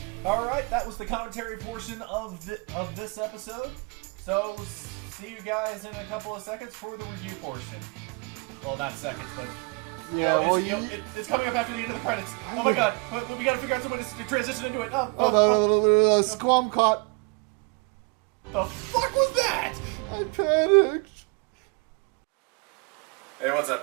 all right. That was the commentary portion of this episode. So see you guys in a couple of seconds for the review portion. Well, not seconds, but Yeah, well, it's coming up after the end of the credits. Oh my god, but we got to figure out some way to transition into it. Squam caught. The fuck was that? I panicked. Hey, what's up,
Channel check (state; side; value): quieter; left; 31.3 dB